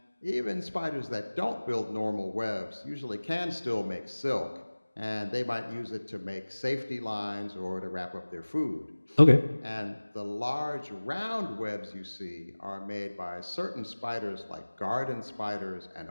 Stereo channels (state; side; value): inverted; both; correlation -1.00